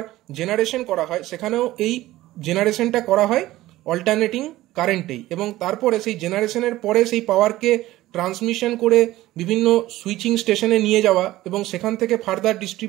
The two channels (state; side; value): quieter; left; 16.3 dB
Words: জেনারেশন করা হয়, সেখানেও এই জেনারেশনটা করা হয় অল্টারনেটিং কারেন্টেই। এবং তারপরে সেই জেনারেশনের পরে সেই পাওয়ারকে ট্রান্সমিশন করে বিভিন্ন সুইচিং স্টেশনে নিয়ে যাওয়া এবং সেখান থেকে ফার্দার